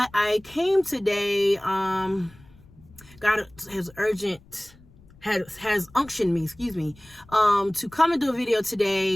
I came today. God has unctioned me, to come and do a video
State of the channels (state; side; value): noise; left; rumble, 25 dB below the sound